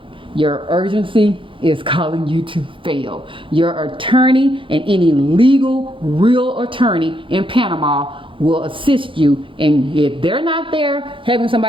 Your urgency is calling you to fail. Your attorney and any legal, real attorney in Panama will assist you, and if they're not there, having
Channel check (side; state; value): left; late; 0.25 ms